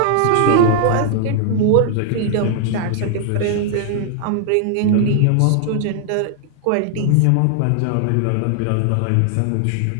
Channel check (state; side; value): different; both; correlation 0.00